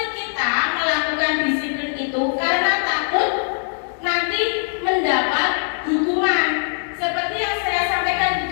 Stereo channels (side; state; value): right; silent; digital silence